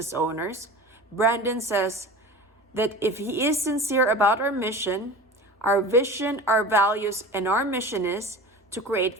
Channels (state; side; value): normal; both; correlation 0.35